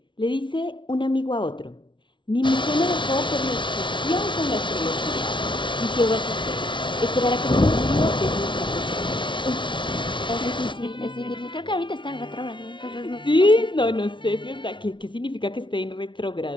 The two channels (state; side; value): late; right; 0.24 ms